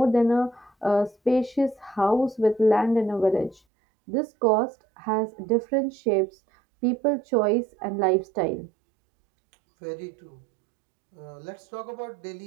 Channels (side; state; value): left; drops out; at 3.6 s